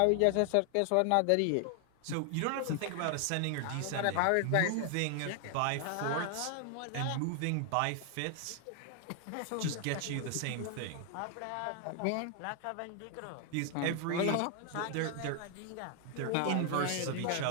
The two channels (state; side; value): different; both; correlation 0.00